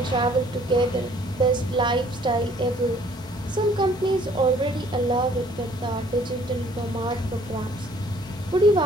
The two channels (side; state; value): both; normal; correlation 0.59